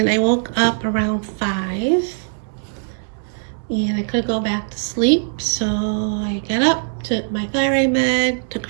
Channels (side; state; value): left; silent; 64 dB below the other